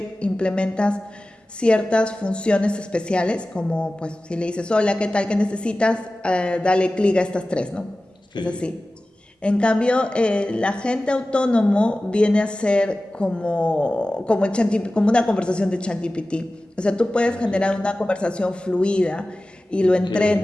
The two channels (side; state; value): both; normal; correlation 0.96